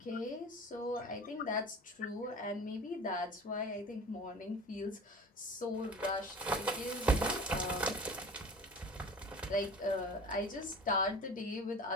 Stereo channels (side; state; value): both; normal; correlation 0.39